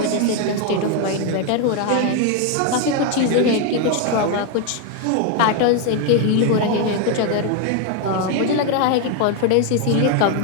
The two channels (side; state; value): both; different; correlation 0.01